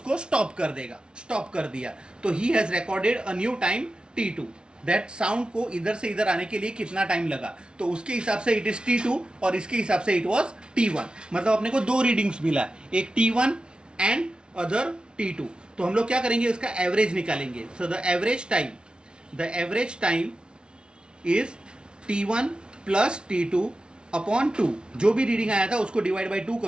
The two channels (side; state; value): left; late; 0.055 ms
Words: स्टॉप कर देगा. स्टॉप कर दिया. तो he has recorded a new time T2. That sound को इधर से इधर आने के लिए कितना टाइम लगा, तो उसके हिसाब से इट इज T2 और इसके हिसाब से इट वाज T1. मतलब अपने को दो रीडिंग्स मिला, एक T1 एंड अदर T2. तो हम लोग क्या करेंगे? इसका एवरेज निकालेंगे. So the average time is T1 plus T2 upon 2. जो भी रीडिंग आया था उसको डिवाइड बाई 2